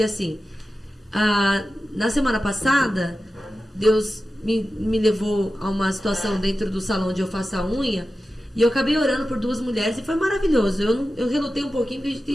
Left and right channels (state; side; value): normal; both; correlation 0.93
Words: assim, na semana passada, Deus me levou a uma situação dentro do salão onde eu faço a unha, e eu acabei orando por 2 mulheres e foi maravilhoso. Eu relutei um pouquinho, porque